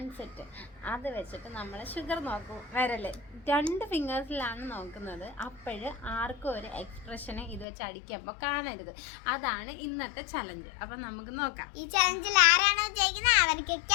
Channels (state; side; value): drops out; right; at 7.7 s